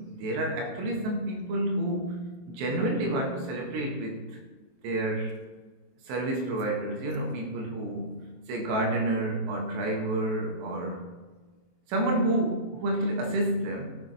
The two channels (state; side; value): late; left; 23 ms